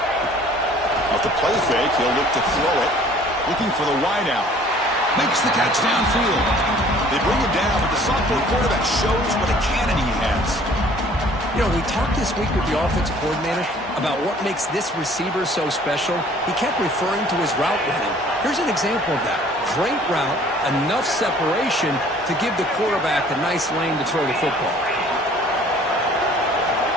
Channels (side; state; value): both; normal; correlation 0.54